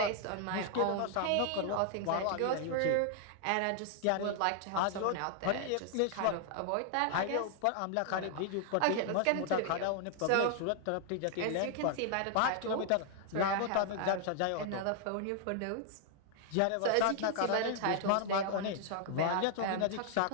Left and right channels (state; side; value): different; both; correlation 0.00